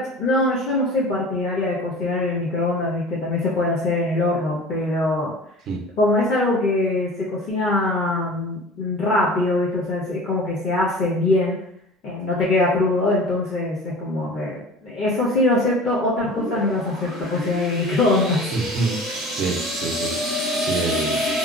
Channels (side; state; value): both; normal; correlation 0.40